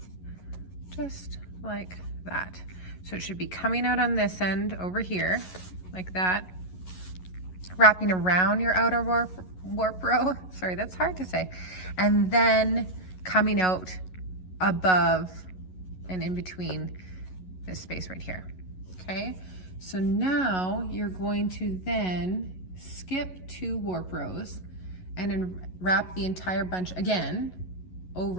just like that. So it should be coming out on this end over here like that, wrapping around your outer warp row. Sorry, that's hard to say. And then coming out above and in between this space right here. Okay, so now you're going to then skip 2 warp rows and then wrap the entire bunch again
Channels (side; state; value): right; late; 11 ms